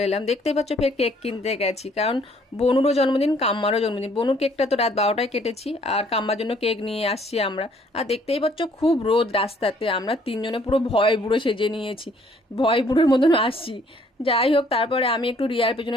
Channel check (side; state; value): both; normal; correlation 0.62